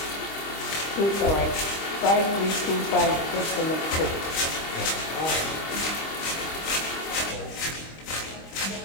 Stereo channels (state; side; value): late; right; 25 ms